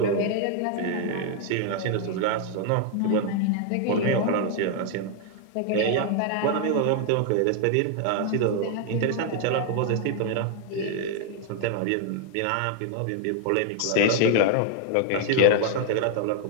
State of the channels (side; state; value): both; different; correlation 0.00